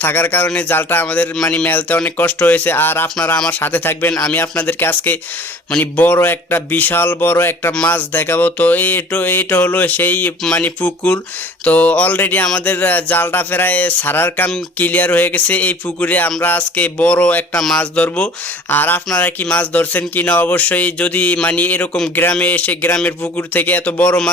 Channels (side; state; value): both; normal; correlation 0.47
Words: থাকার কারণে জালটা আমাদের মানে মেলতে অনেক কষ্ট হয়েছে। আর আপনারা আমার সাথে থাকবেন, আমি আপনাদেরকে আজকে মানে বড় একটা বিশাল বড় একটা মাছ দেখাবো। তো এইটা হলো সেই মানে পুকুর। তো অলরেডি আমাদের জালটা প্রায় সারার কাম ক্লিয়ার হয়ে গেছে, এই পুকুরে আমরা আজকে বড় একটা মাছ ধরবো। আর আপনারা কি মাছ ধরছেন কি না অবশ্যই, যদি মানে এরকম গ্রামে এসে গ্রামের পুকুর থেকে এত বড়